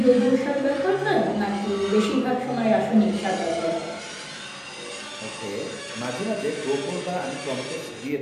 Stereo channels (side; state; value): both; identical; correlation 1.00